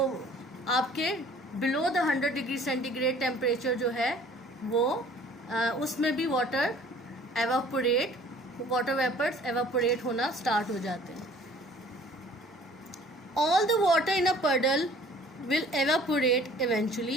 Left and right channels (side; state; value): both; normal; correlation 0.52